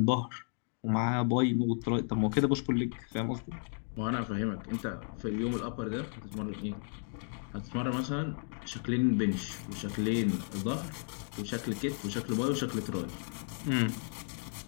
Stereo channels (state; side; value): silent; right; 55 dB below the other